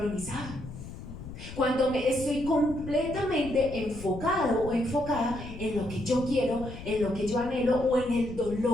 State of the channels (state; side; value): noise; left; rumble, 12 dB below the sound